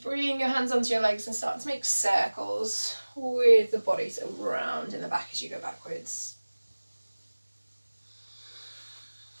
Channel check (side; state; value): both; inverted; correlation -1.00